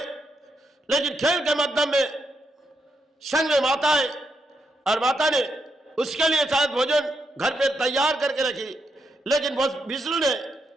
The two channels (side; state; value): both; normal; correlation 0.81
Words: लेकिन खेल के माध्यम में संग में माता है, और माता ने उसके लिए शायद भोजन घर पे तैयार करके रखी, लेकिन विष्णु ने